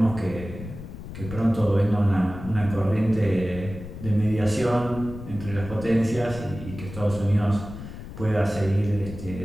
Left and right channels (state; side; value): noise; left; rumble, 11 dB below the sound